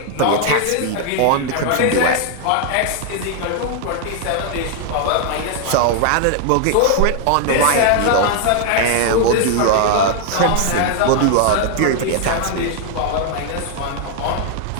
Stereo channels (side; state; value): both; different; correlation 0.00